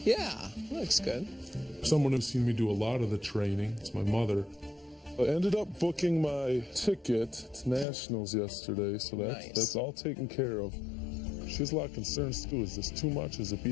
Yeah, looks good. Someone who's seen me do a lot of the training, it's my mother. I ended up booking my ticket to Nationals yesterday, so that's all taken care of. She has a lot of concerns too. Is this too much? Is it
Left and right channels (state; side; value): drops out; right; at 7.9 s